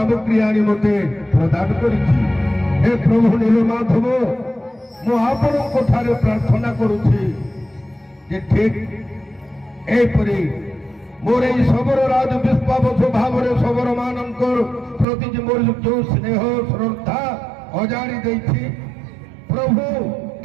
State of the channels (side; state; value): left; drops out; at 15.1 s